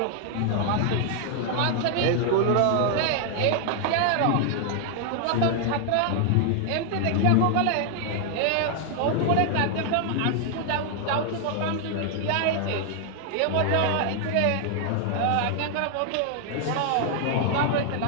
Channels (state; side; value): different; both; correlation 0.00